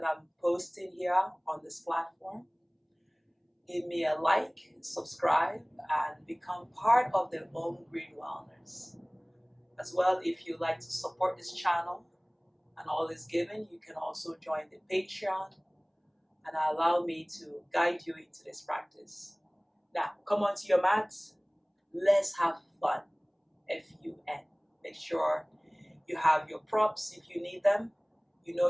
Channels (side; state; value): both; identical; correlation 1.00